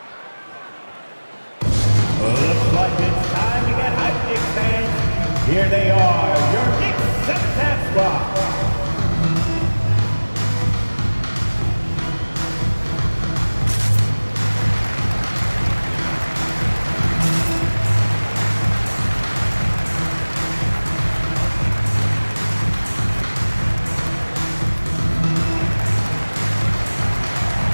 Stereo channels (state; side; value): inverted; both; correlation -1.00